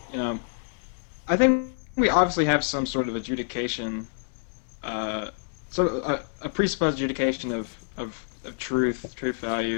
I think we obviously have some sort of adjudication, a presupposed adjudication of truth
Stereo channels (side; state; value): right; silent; 60 dB below the other